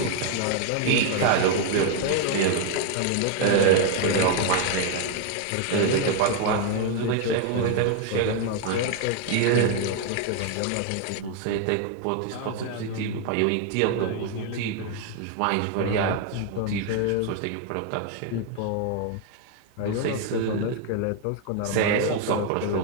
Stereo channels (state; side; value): different; both; correlation 0.01